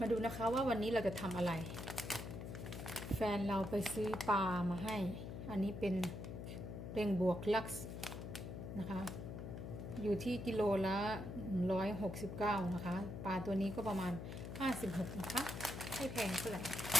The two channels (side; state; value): left; noise; hum, 7 dB below the sound